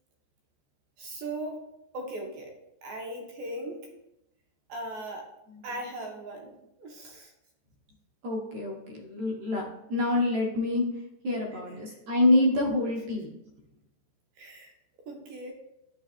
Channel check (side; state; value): left; late; 14 ms